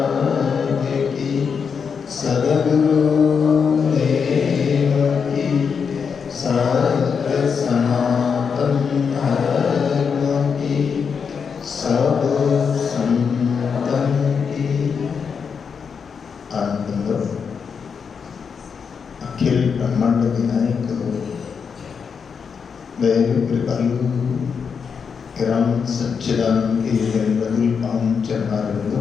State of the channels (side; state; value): right; quieter; 6.2 dB